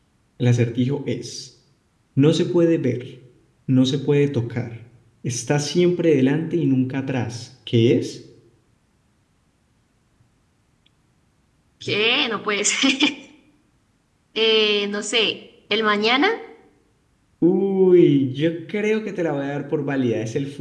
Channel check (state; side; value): identical; both; correlation 1.00